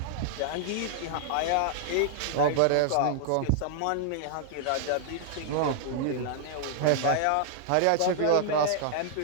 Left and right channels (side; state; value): both; different; correlation -0.01